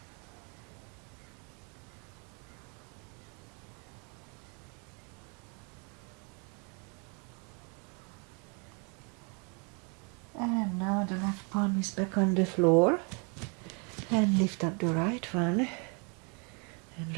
And now the left palm is back on the floor. And lift up the right one. And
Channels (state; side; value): quieter; left; 34.9 dB